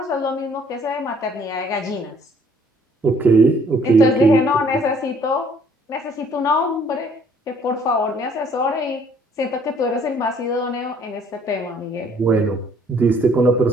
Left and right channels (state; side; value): normal; both; correlation 0.61